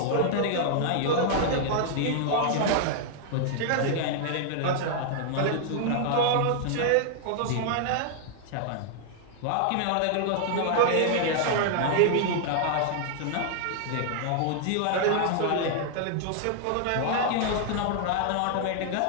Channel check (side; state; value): both; different; correlation 0.00